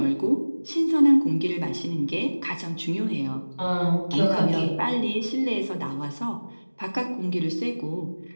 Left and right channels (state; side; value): inverted; both; correlation -1.00